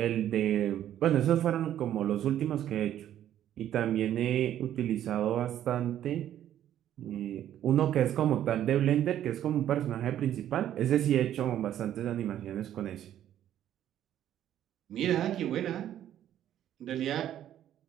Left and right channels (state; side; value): quieter; left; 11.3 dB